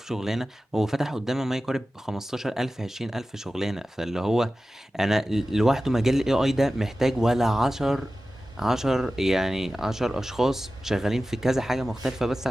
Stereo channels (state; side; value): normal; both; correlation 0.95